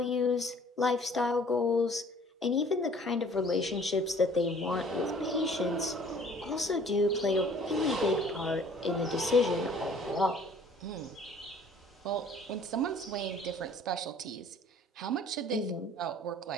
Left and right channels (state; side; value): normal; both; correlation 0.53